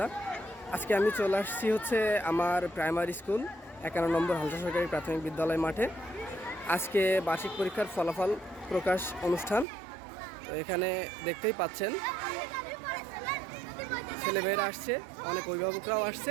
আজকে আমি চলে আসছি আমার প্রাইমারি স্কুল 51 নম্বর হালসা সরকারি প্রাথমিক বিদ্যালয় মাঠে। আজকে বার্ষিক পরীক্ষার ফলাফল প্রকাশ অনুষ্ঠান। তো এখানে দেখতেই পাচ্ছেন ছেলেমেয়েরা আসছে, অনেক অভিভাবকরাও আসছে।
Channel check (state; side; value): drops out; left; at 9.7 s